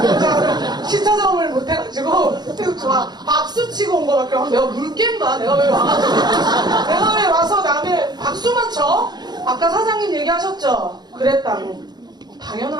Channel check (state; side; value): late; left; 0.20 ms